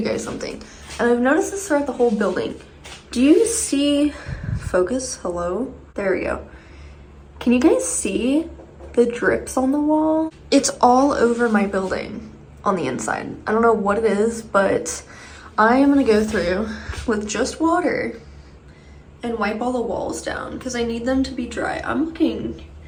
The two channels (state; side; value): identical; both; correlation 1.00